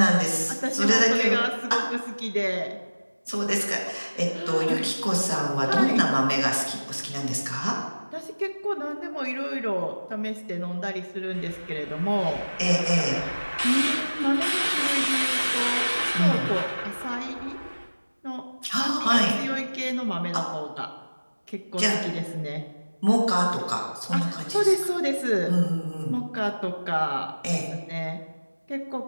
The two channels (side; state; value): both; inverted; correlation -1.00